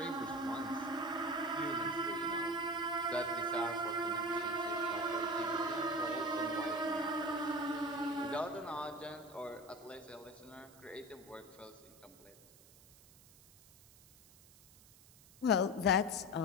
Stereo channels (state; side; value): noise; right; hiss, 24 dB below the sound